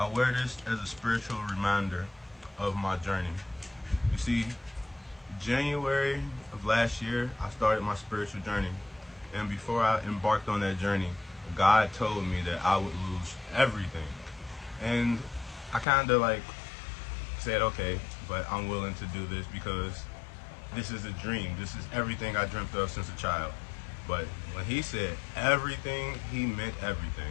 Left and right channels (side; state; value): right; drops out; at 15.9 s